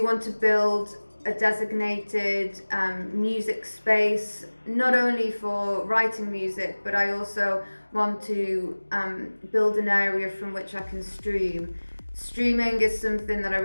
want to build a designated music space, not only for writing music, but I also want to build an area from which I can stream. Streaming is something that I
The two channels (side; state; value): both; inverted; correlation -1.00